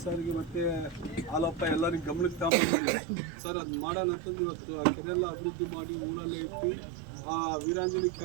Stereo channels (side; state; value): left; drops out; at 2.5 s